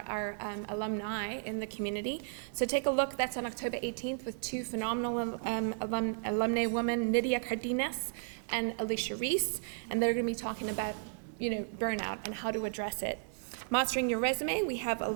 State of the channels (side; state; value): left; silent; digital silence